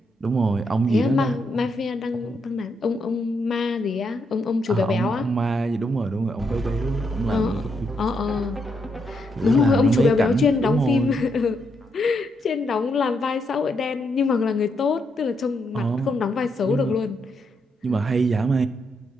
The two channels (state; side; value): normal; both; correlation 0.79